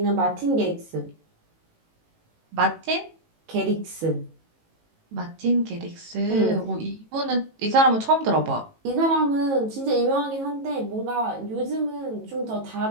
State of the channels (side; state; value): left; late; 18 ms